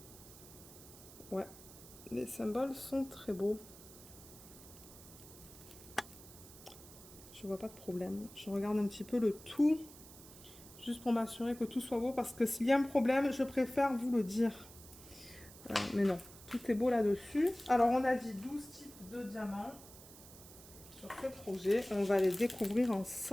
Ouais, les symboles sont très beaux. Je vois pas de problème. Je regarde un petit peu le tout, juste pour m'assurer que tout soit beau, parce que s'il y a un problème, je préfère vous le dire. Mais non, tout est beau là-dessus. Alors, on a dit 12 types de diamants sur ce projet. On va les découvrir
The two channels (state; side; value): noise; right; hiss, 18 dB below the sound